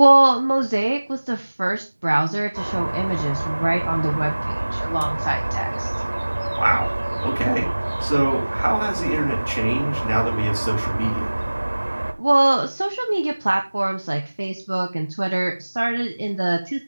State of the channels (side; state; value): both; inverted; correlation -1.00